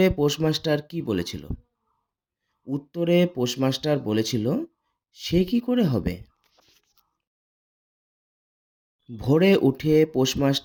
পোস্টমাস্টার কি বলেছিল? উত্তরে পোস্টমাস্টার বলেছিল, সে কি করে হবে? ভোরে উঠে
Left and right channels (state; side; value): identical; both; correlation 1.00